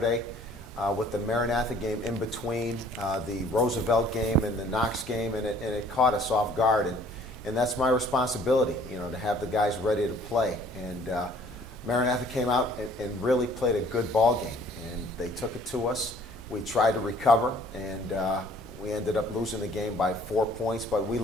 with the Maranatha game in between the Roosevelt game and the Knox game, and it caught us off guard. And that's my responsibility, you know, to have the guys ready to play. And Maranatha came out and really played a good ball game, and they took it to us. We tried to recover, and we ended up losing the game by 4 points, but we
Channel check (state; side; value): normal; both; correlation 0.56